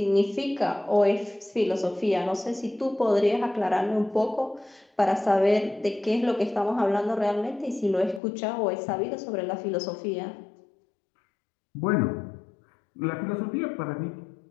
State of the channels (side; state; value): right; drops out; at 8.2 s